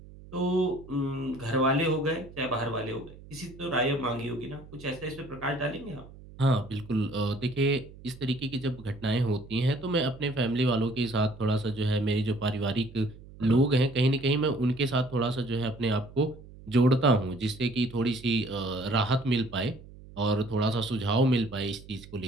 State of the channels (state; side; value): noise; right; hum, 19 dB below the sound